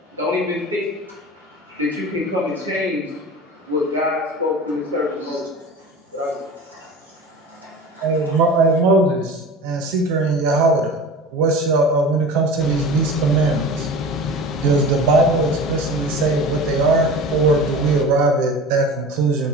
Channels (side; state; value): both; normal; correlation 0.36